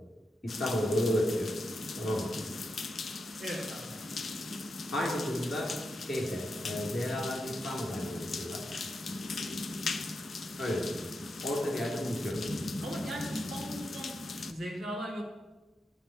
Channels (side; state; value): both; normal; correlation 0.86